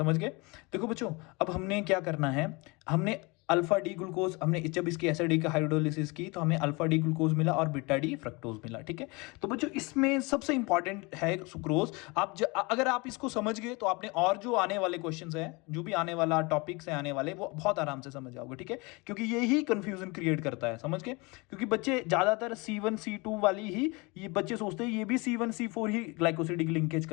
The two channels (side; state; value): right; quieter; 26.9 dB